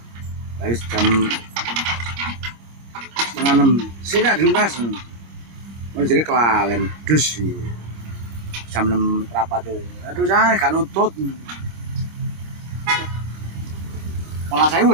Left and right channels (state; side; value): late; left; 25 ms